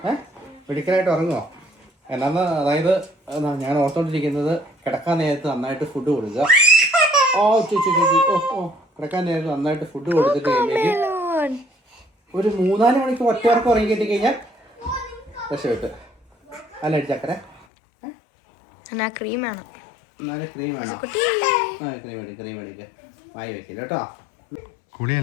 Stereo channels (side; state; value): right; drops out; at 17.7 s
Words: മെഡിക്കലായിട്ട് ഉറങ്ങുമോ? എന്നാന്ന് അതായത് ഞാൻ ഓർത്തോണ്ടിരിക്കുന്നത് കിടക്കാൻ നേരത്ത് നന്നായിട്ട് ഫുഡ് കൊടുക്കുക. കിടക്കാൻ നേരത്ത് നന്നായിട്ട് ഫുഡ് കൊടുത്തിട്ട് കഴിയുമ്പോഴേക്കും ഒരു 3-4 മണിക്ക് ഒറ്റവർക്ക് ഉറങ്ങി കിട്ടി കഴിഞ്ഞാൽ രക്ഷപ്പെട്ട്. അല്ല ചക്കര ക്രീം വേണം. എന്നാലും ക്രീം വേണോ? ക്രീം മേടിക്കുക. വായി വെക്കില്ല കേട്ടോ.